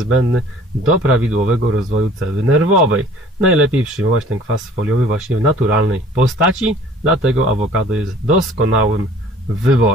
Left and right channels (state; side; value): normal; both; correlation 0.51